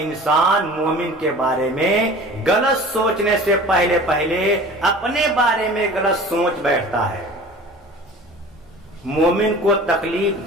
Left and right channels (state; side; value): normal; both; correlation 0.42